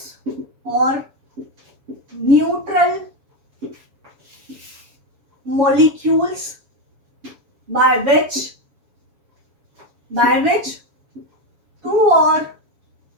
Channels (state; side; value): late; left; 7.2 ms